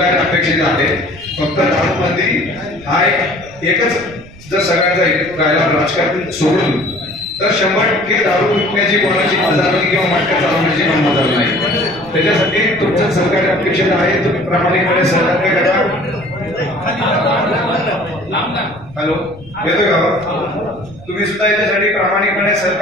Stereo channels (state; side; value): noise; right; rumble, 21 dB below the sound